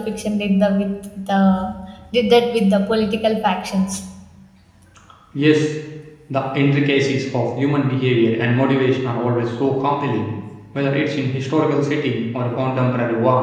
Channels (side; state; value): both; identical; correlation 1.00